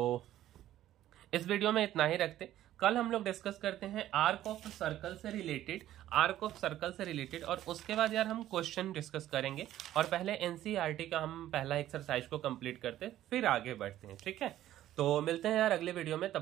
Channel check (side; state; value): left; quieter; 13.1 dB